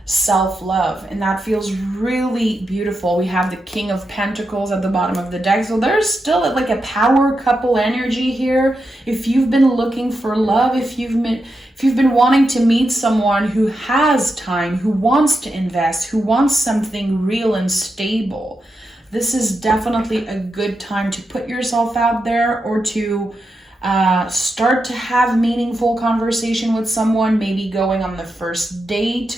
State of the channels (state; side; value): normal; both; correlation 0.87